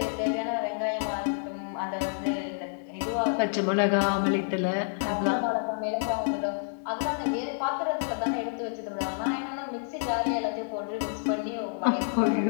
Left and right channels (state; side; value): silent; right; 59 dB below the other